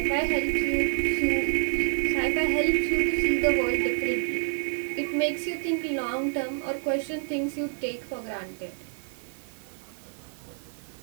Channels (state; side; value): silent; left; 60 dB below the other